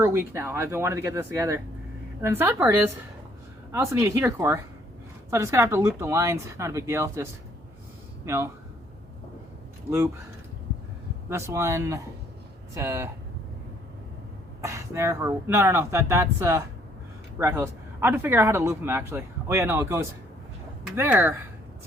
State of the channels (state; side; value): normal; both; correlation 0.64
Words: a week now. I've been wanting to get this together. And then the sad part is, I also need a heater core. So I'm just gonna have to loop the lines, not a big deal, just, you know, loop this one to there, or, no, that's rat hose. I have to figure out how to loop them actually. Oh yeah, no, it goes there